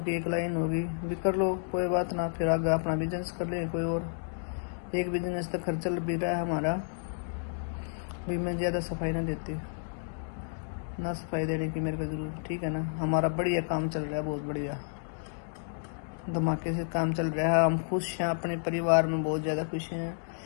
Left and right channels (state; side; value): silent; right; digital silence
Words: की एक लाइन होगी, भी कर लो कोई बात ना, फिर आगे अपना बिजनेस कर लेंगे कोई और। एक बिजनेस तक खर्च चल भी रहा है हमारा। भी मैं ज़्यादा सफाई ना देती, ना सफाई देने की मेरे को जरूरत, ठीक है ना। हमारा बढ़िया काम चल रहा है, बहुत बढ़िया धमाके से काम चल रहा है। हम खुश हैं, अपने परिवार में बहुत ज़्यादा खुश हैं